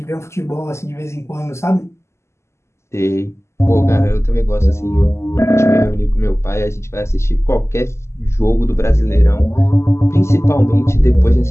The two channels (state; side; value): late; right; 0.13 ms